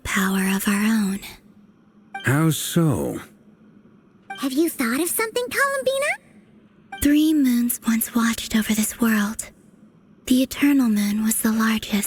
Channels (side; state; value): both; identical; correlation 1.00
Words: of our own? How so? Have you thought of something, Columbina? 3 moons once watched over this world. The Eternal Moon was the